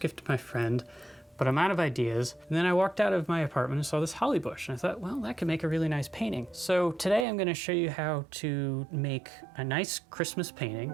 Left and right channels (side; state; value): left; drops out; at 7.2 s